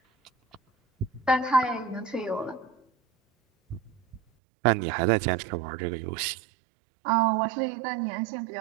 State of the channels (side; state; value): left; drops out; at 4.2 s